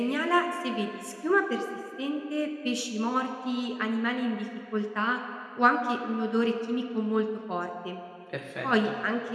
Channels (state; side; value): identical; both; correlation 1.00